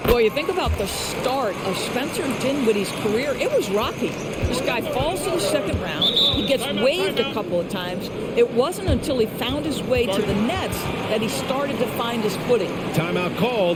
Boy, you think about the start of Spencer Dinwiddie's career, it was rocky. This guy falls to the second round. He gets waived a couple of times. It wasn't until he found his way to the Nets that he started to find his footing. Timeout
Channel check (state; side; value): identical; both; correlation 1.00